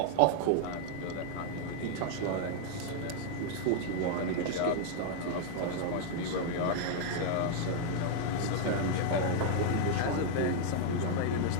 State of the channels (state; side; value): different; both; correlation 0.00